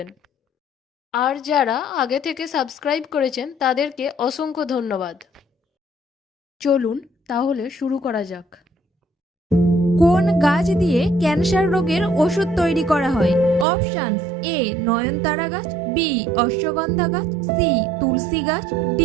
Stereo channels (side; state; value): left; drops out; at 13.7 s